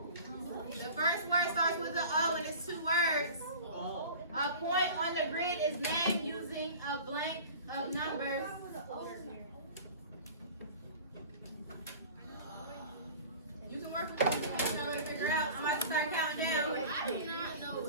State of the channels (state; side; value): inverted; both; correlation -0.40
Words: The first word starts with an O, and it's 2 words. A point on the grid is named using a blank of numbers. You can work with this if you know to figure out. I'm about to start counting down.